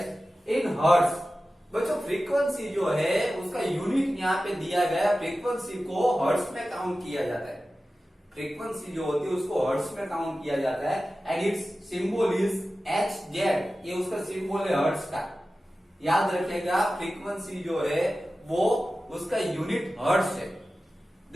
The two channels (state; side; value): normal; both; correlation 0.95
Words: in hertz. बच्चों फ्रीक्वेंसी जो है उसका यूनिट यहाँ पे दिया गया, फ्रीक्वेंसी को हर्ट्ज में काउंट किया जाता है। फ्रीक्वेंसी जो होती है उसको हर्ट्ज में काउंट किया जाता है, and it's symbol is Hz। ये उसका सिंबल है हर्ट्ज का। याद रखिएगा, फ्रीक्वेंसी जो है वो उसका यूनिट हर्ट्ज है।